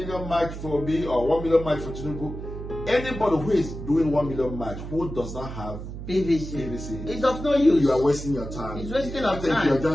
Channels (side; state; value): right; noise; hum, 9 dB below the sound